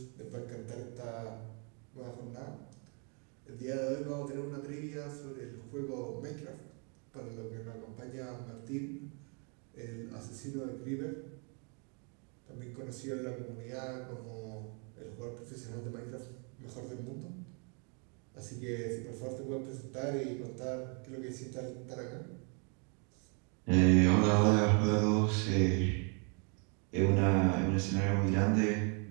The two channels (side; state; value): left; quieter; 37.3 dB